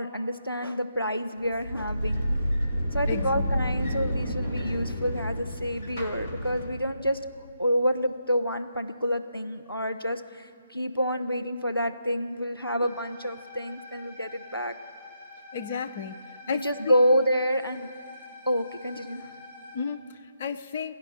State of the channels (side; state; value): both; inverted; correlation -0.81